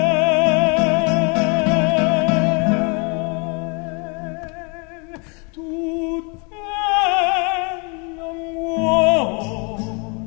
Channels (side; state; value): right; quieter; 33.4 dB